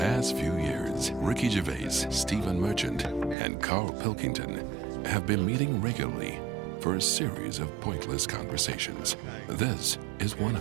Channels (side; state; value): left; drops out; at 3.4 s